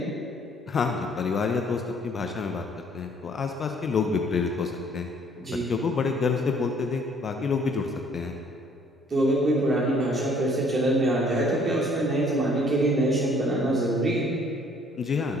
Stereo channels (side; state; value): both; normal; correlation 0.60